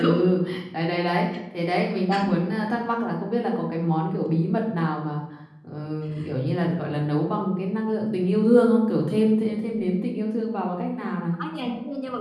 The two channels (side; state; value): both; identical; correlation 1.00